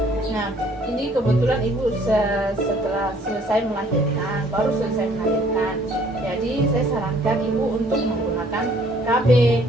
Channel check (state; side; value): normal; both; correlation 0.60